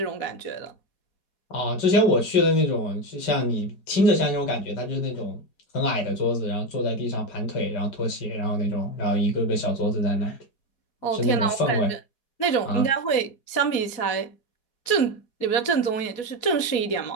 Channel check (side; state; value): right; late; 4.2 ms